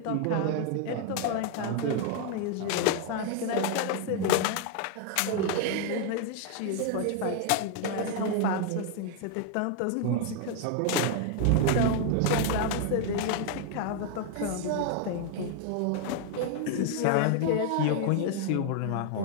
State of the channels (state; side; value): different; both; correlation 0.00